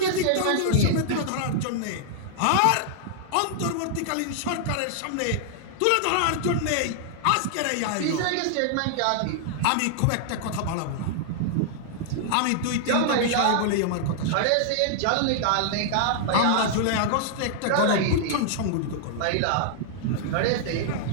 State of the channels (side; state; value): both; different; correlation -0.01